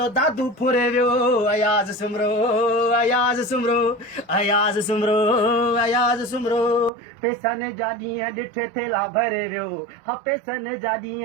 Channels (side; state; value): left; drops out; at 6.9 s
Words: दादू फुरे वियो अयाज़ सुमरो अयाज़ सुमरो अयाज़ सुमरो अयाज़ सुमरो पेसन जा ॾींहं ॾिठे थेला भरे वियो हा पेसन जा